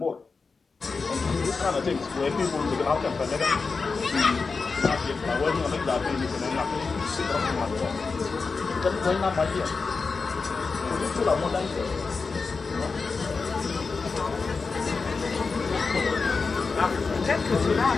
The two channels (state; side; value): quieter; right; 4.5 dB